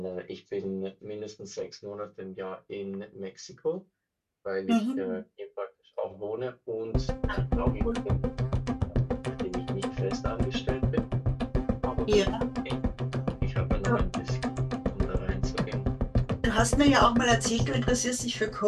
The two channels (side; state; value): both; identical; correlation 1.00